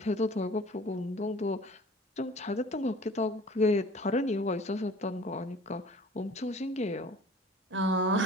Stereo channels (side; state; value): both; normal; correlation 0.47